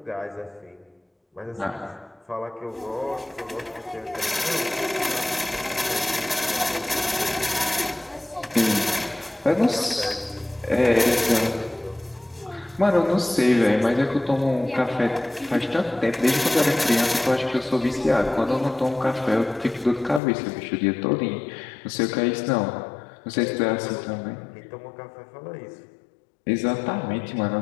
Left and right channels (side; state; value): right; drops out; at 20.2 s